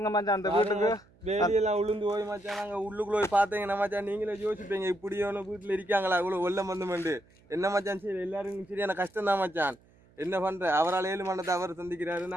மச்சான், அந்த வீட்டுக்கு வேலியெல்லாம் உளுந்து போய் மச்சான். நாங்க உள்ளுக்குள்ள போய் பார்த்தீங்கன்னா மச்சான் நீங்களே யோசிப்பீங்க இப்படியான வீட்டுல இருக்காங்களா இவ்வளவு வெள்ளம் வந்து என்ன மச்சான் சரி எல்லாரும் சரியான கஷ்டம் தான் மச்சான். என்ன பண்ற அவரால் 7 மண்டத்தை அவர் சந்திக்கிறாரு,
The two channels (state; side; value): noise; right; hum, 30 dB below the sound